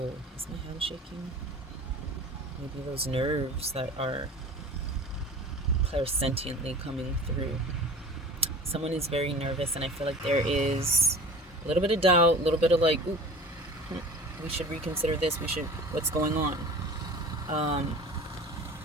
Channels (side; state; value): both; normal; correlation 0.40